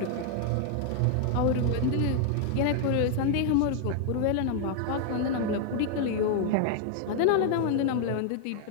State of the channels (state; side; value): different; both; correlation 0.00